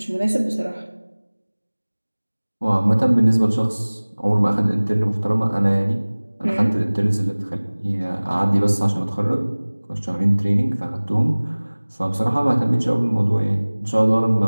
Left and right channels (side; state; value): both; inverted; correlation -1.00